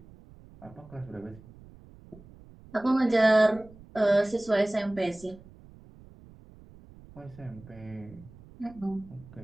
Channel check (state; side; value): noise; right; rumble, 22 dB below the sound